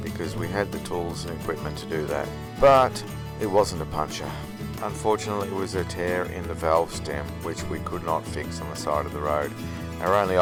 because we had the tools and equipment to do that. But it wasn't a puncture. Unfortunately, it was a tear in the valve stem which we could not fix on the side of the road. Our only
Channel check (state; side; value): identical; both; correlation 1.00